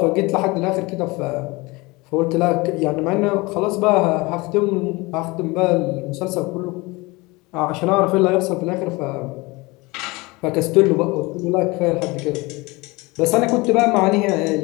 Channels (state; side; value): quieter; right; 24.0 dB